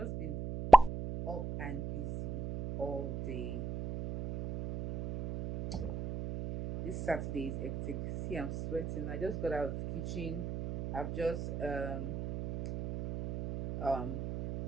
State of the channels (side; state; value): right; noise; hum, 6 dB below the sound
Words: been up and busy all day. This Saturday is hectic. See, I'm sweating. I just got out of the kitchen. I've just um